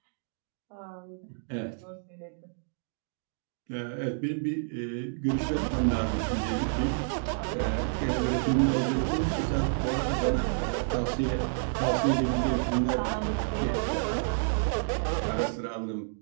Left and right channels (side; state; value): left; silent; digital silence